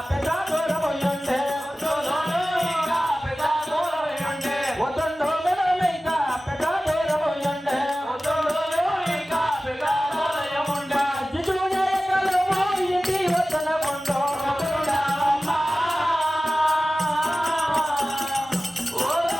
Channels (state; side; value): normal; both; correlation 0.96